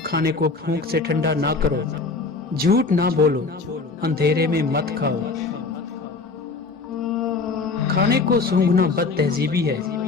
کھانے کو پھونک سے ٹھنڈا نہ کرو، جھوٹ نہ بولو، اندھیرے میں مت کھاؤ۔ کھانے کو سونگھنا بد تہذیبی ہے،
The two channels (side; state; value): right; quieter; 4.1 dB